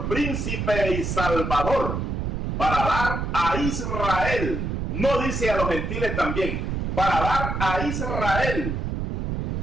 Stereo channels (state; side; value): noise; right; rumble, 2 dB below the sound